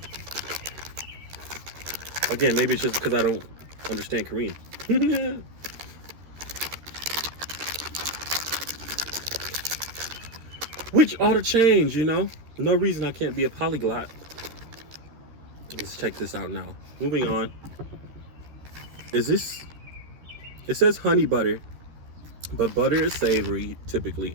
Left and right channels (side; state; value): left; late; 13 ms